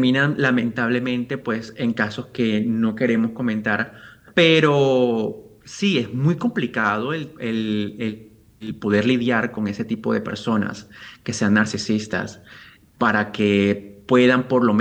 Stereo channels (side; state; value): both; identical; correlation 1.00